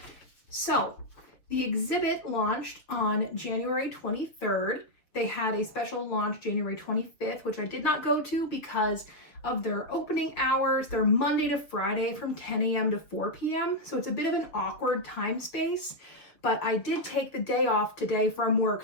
So the exhibit launched on January 23rd. They had a special launch January 25th, which I did not go to because of their opening hours. They're Monday to Friday from 10 a.m. to 4 p.m. So it's a bit of an awkward time space, but I did take the day off today from work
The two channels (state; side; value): late; right; 6.7 ms